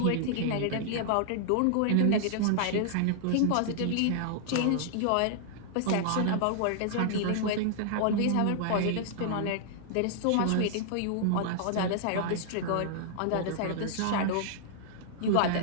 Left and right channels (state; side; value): different; both; correlation -0.01